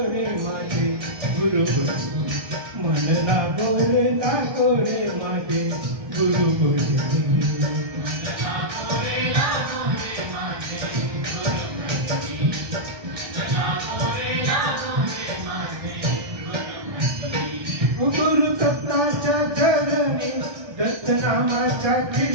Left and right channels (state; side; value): late; left; 1.2 ms